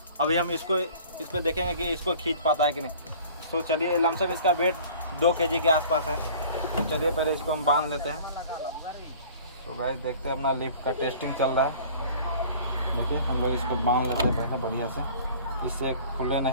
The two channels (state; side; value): inverted; both; correlation -0.47